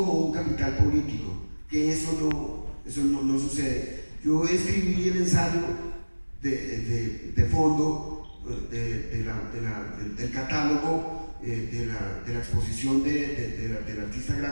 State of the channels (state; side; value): inverted; both; correlation -1.00